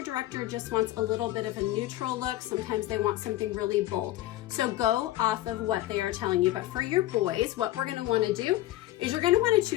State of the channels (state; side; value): quieter; right; 15.6 dB